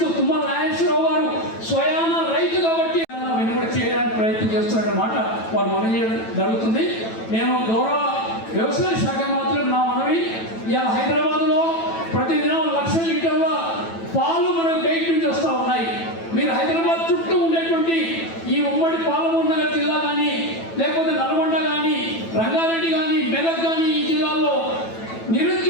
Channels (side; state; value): right; late; 9.1 ms